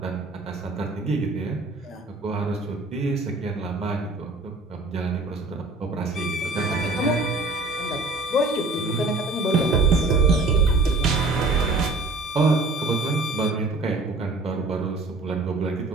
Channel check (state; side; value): quieter; left; 3.1 dB